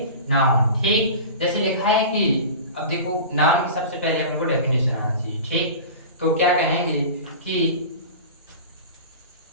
नाउन। ठीक, जैसे लिखा है कि अब देखो नाउन की सबसे पहले अपने को डेफिनेशन आना चाहिए। ठीक, तो क्या कहेंगे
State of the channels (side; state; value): both; inverted; correlation -0.34